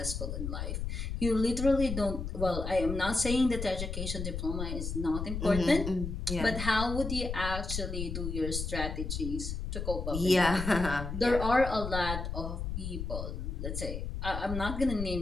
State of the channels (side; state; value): left; noise; rumble, 4 dB below the sound